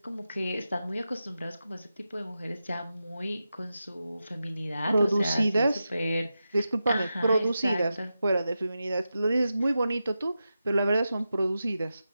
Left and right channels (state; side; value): inverted; both; correlation -0.90